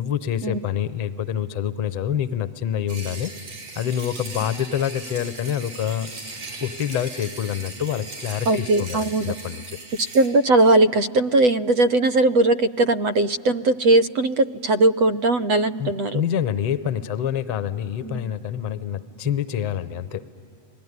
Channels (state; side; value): late; left; 8.1 ms